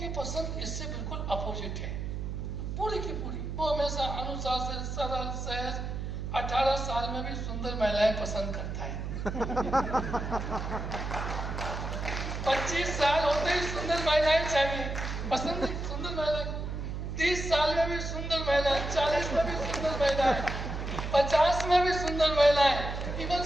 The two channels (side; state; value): right; noise; hum, 4 dB below the sound